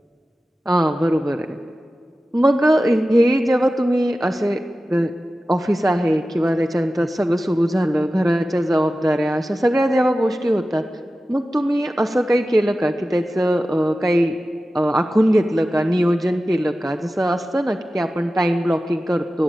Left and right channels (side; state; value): both; normal; correlation 0.94